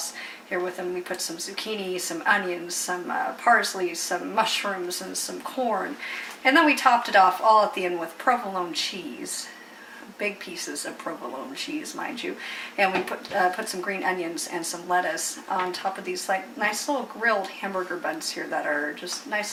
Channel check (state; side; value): identical; both; correlation 1.00